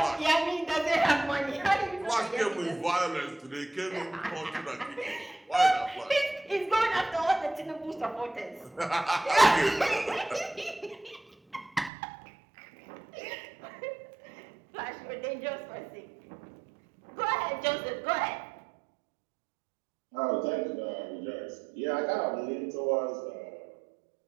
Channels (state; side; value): drops out; left; at 11.9 s